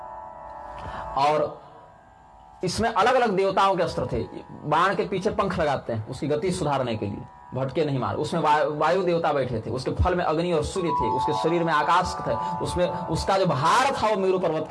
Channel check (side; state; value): both; identical; correlation 1.00